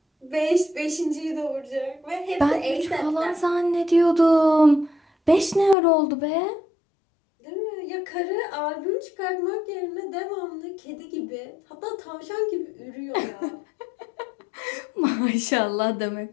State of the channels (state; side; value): drops out; right; at 5.8 s